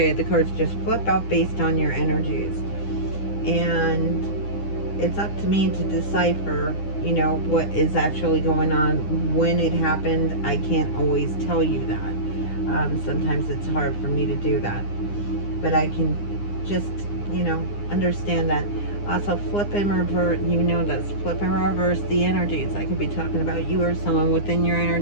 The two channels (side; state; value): right; late; 9.8 ms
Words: The cards just flip out based on your energies. And it's up to me to decipher, you know, what is actually going on. When it happened, I can't always tell you that. Sometimes it's hard for me to do that. But I can just, you know, understand that. Also, flip and reverse, you know this. Flip and reverse the energies. I could be talking about you or someone within your